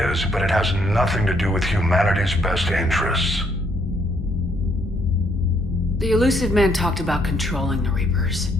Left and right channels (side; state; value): both; normal; correlation 0.70